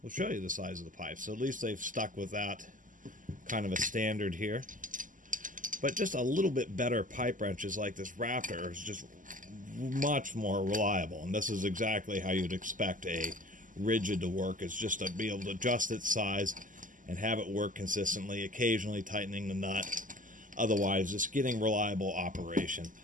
will show you the size of the pipe. So at least they've stuck with that kind of a standard here. But just a little bit better pipe wrenches like this Raptor is just much more reliable. And this is exactly how you'd expect a rigid to work. It's just to be able to adjust its size and have it work consistently, occasionally tightening the nut. Otherwise, just getting reliable operation.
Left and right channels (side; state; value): left; late; 0.38 ms